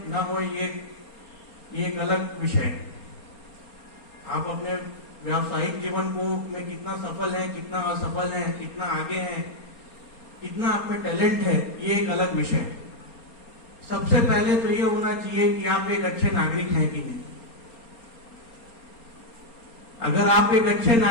ना होए, ये एक अलग विषय है। आप अपने व्यावसायिक जीवन को में कितना सफल है, कितना असफल है, कितना आगे है, कितना आप में टैलेंट है, ये एक अलग विषय है। सबसे पहले तो ये होना चाहिए कि आप एक अच्छे नागरिक हैं कि नहीं। अगर आप एक अच्छे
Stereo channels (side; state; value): right; late; 4.3 ms